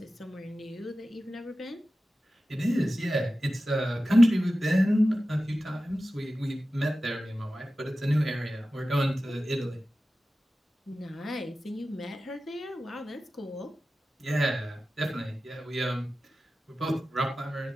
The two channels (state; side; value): normal; both; correlation 0.94